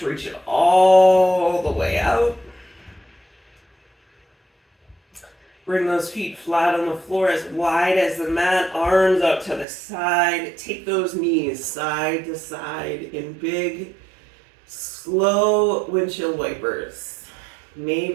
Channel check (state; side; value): drops out; left; at 9.7 s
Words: reach it all the way out. Bring those feet flat on the floor, as wide as the mat, arms up to the side. Take those knees side to side in big, slow windshield wipers.